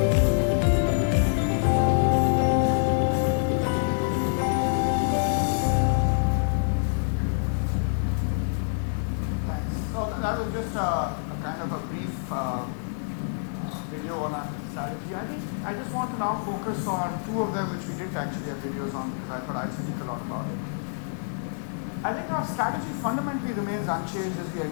Thanks. So that was just a kind of a brief video on our strategy. I just want to now focus on 2 of them which we didn't actually have videos on because I thought I'd speak a lot about it. I think our strategy fundamentally remains unchanged as we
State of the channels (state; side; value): silent; right; digital silence